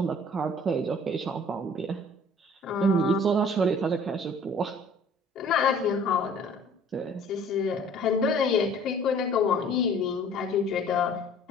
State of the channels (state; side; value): normal; both; correlation 0.52